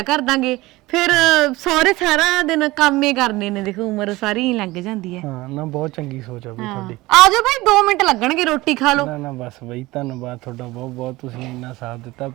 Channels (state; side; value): quieter; left; 19.8 dB